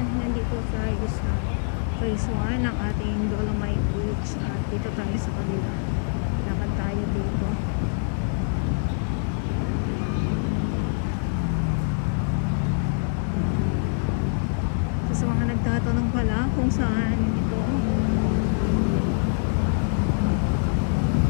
Nandito tayo sa phase 1 ng ating Dolomite Beach. At dito tayo sa kabila. Lakad tayo dito. Sa mga nagtatanong pala kung saan ito,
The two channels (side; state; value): right; silent; 58 dB below the other